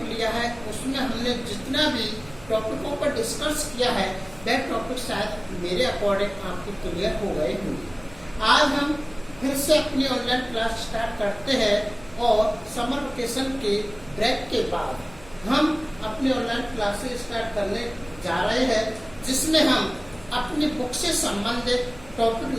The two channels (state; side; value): noise; right; hum, 22 dB below the sound